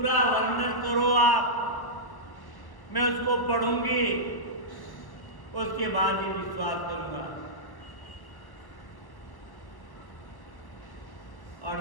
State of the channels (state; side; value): late; right; 1.1 ms